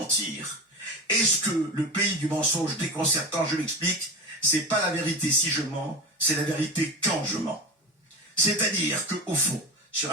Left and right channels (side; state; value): both; normal; correlation 0.26